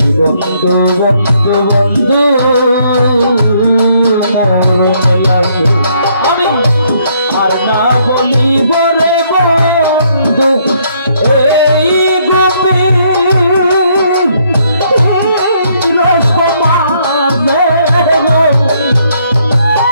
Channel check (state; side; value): inverted; both; correlation -0.69